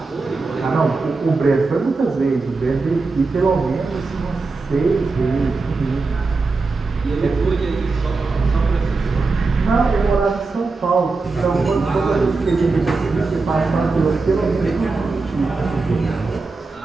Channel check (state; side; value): quieter; left; 3.9 dB